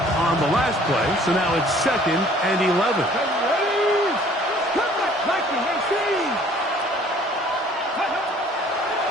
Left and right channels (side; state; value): both; normal; correlation 0.55